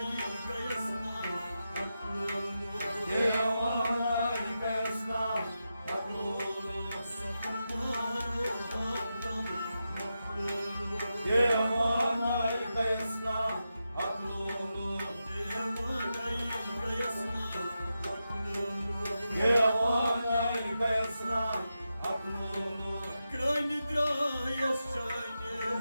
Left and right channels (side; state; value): both; inverted; correlation -0.89